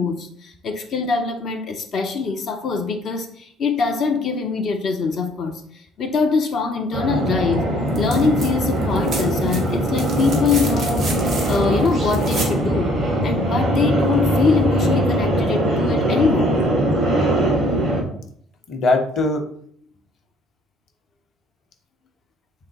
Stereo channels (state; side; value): normal; both; correlation 0.60